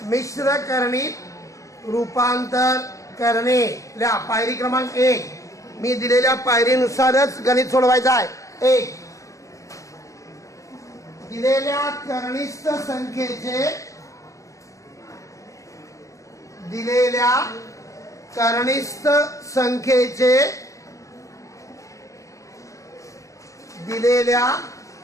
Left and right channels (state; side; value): late; right; 0.15 ms